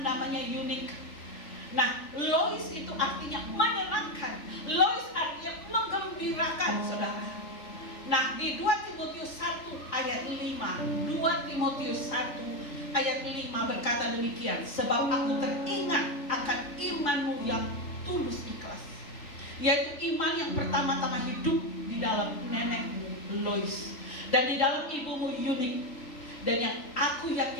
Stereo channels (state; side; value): late; right; 3.4 ms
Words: namanya Eunike. Nah, Lois itu artinya menyenangkan. Lois artinya menggembirakan, saudara. Nah, di 2 Timotius 1 ayat 5, 2 Timotius 1 ayat 5 berkata demikian, sebab aku teringat akan imanmu yang tulus ikhlas, yaitu iman yang pertama-tama hidup di dalam nenekmu Lois dan di dalam ibumu Eunike, dan yang aku